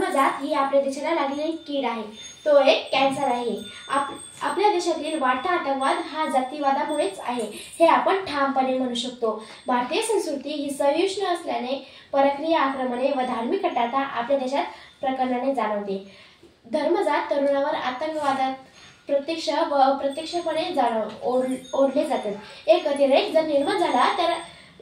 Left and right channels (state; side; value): identical; both; correlation 1.00